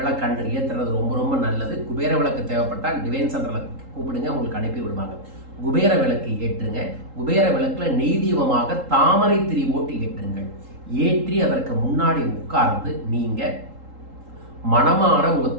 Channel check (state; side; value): late; left; 3.8 ms